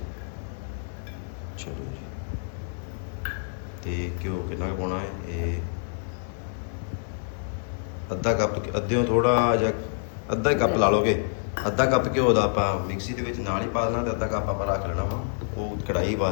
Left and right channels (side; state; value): right; silent; 60 dB below the other